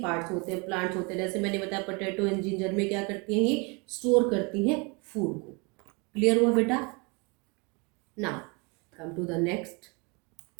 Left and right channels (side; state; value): left; quieter; 30.4 dB